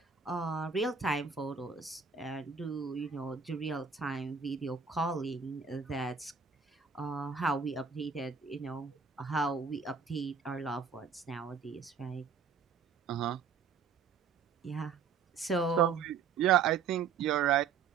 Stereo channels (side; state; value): left; quieter; 6.0 dB